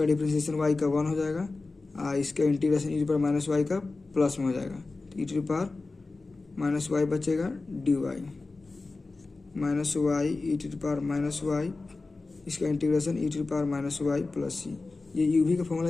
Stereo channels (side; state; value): right; quieter; 3.6 dB